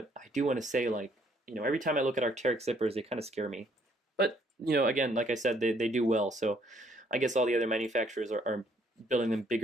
I do want to say, every time I look at Arc'Teryx zippers, they kind of scare me. But, again, like I said, they do well, so I guess all the other manufacturers are building them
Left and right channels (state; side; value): normal; both; correlation 0.66